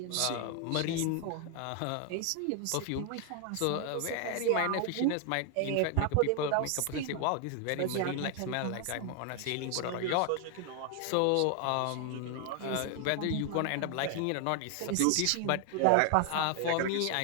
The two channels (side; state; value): both; different; correlation 0.00